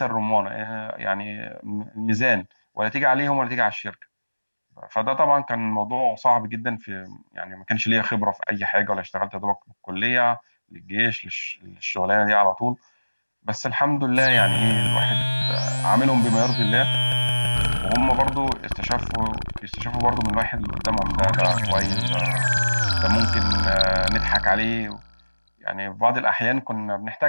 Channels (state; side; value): inverted; both; correlation -1.00